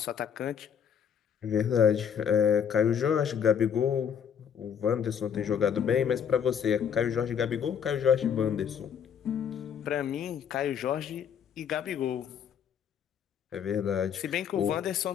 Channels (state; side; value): quieter; right; 7.9 dB